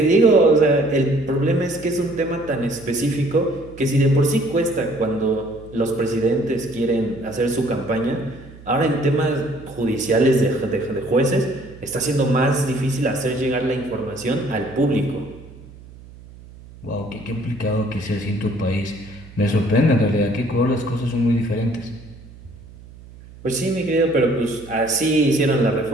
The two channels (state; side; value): noise; right; hum, 20 dB below the sound